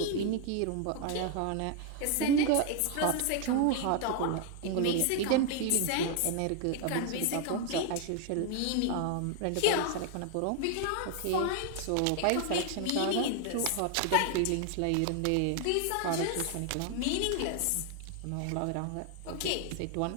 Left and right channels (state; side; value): different; both; correlation 0.00